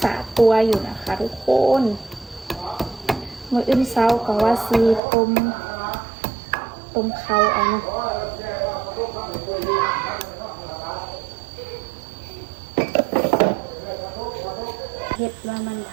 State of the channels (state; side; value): drops out; left; at 5.0 s